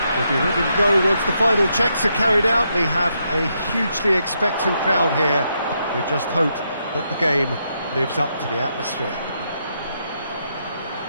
We'll be ready to go once the final checks are carried out. We have a hugely expectant crowd here. We just hope that the game lives up to the atmosphere.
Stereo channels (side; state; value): both; inverted; correlation -0.80